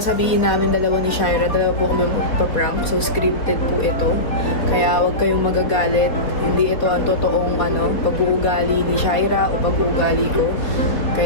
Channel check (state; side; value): late; right; 4.1 ms